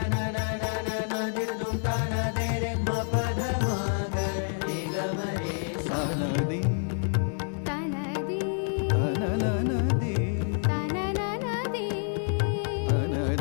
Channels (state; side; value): silent; right; 59 dB below the other